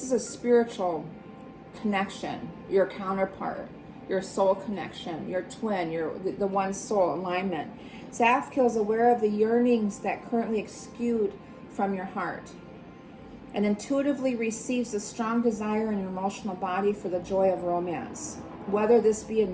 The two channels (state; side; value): identical; both; correlation 1.00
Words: is a spiritual connection, your counterpart, your soul connection, your twin, the one soul alignment. Zafkiel is aware of the yearnings that currently exude from your heart and intuitively receives a strong desire in your emotional body for the joy of romance, whether this be a